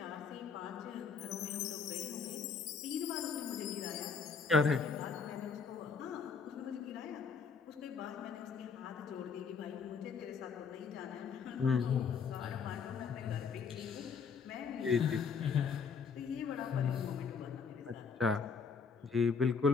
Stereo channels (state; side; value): quieter; right; 5.6 dB